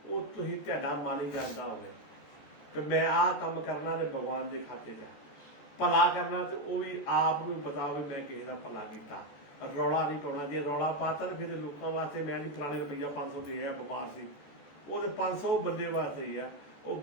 वो तुसीं तुहाडा मन ही जानदा होवे कि मैं आ काम करना ते भगवान के खाते च भला करना, तो वो भी आप नूं पता हो मैं किसी का भला किया। रौला नहीं पाना। जे रौला पाता तो फिर लोगों वास्ते मैं नहीं फलाने रुपया 500 दे बमार से, वो तो 500 बंदे वास्ते ही है, वो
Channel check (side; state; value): right; late; 14 ms